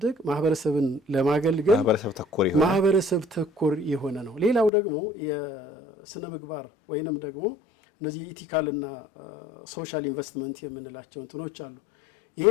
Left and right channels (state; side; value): drops out; right; at 4.7 s